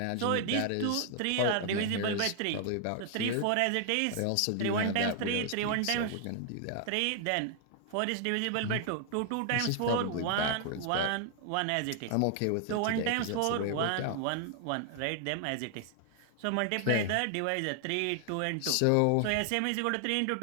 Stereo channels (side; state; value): both; different; correlation 0.00